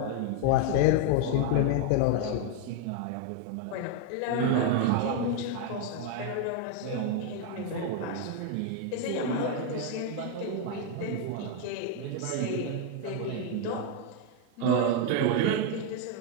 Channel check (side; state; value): both; different; correlation 0.00